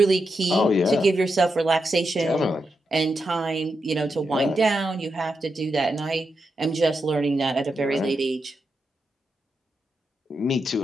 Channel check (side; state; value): both; normal; correlation 0.86